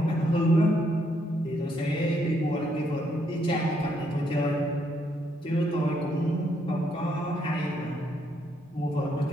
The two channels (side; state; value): both; normal; correlation 0.74